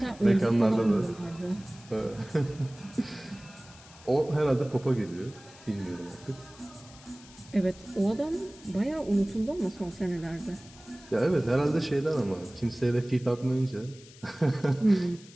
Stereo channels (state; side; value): noise; left; hiss, 22 dB below the sound